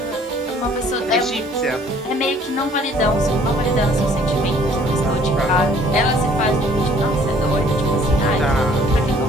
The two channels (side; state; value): both; normal; correlation 0.58